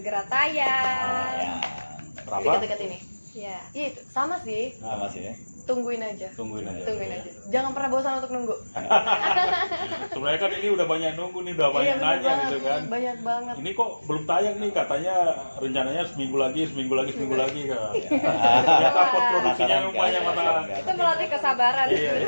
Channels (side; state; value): both; inverted; correlation -1.00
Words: tayang. Ya, Berapa? Dekat-dekat ini. Ya. Iya itu sama sih. sama sih ya. Tungguin aja. Tungguin aja. Tungguin aja. Jangan pernah bosan untuk nunggu. Sebenarnya kan ini udah banyak nunggu nih, udah banyak Iya, nanya banget, gitu kan. Banyak banget. Ini kok belum tayang nih, katanya rencananya seminggu lagi kan. Ternyata pot produksinya Penasaran, banyak kan? mata. Itu melatih kesabaran. Iya.